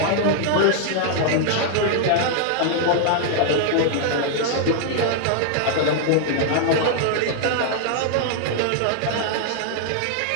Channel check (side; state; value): both; different; correlation 0.00